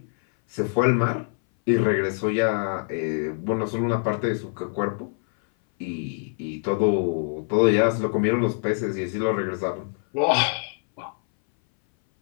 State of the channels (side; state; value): right; silent; 59 dB below the other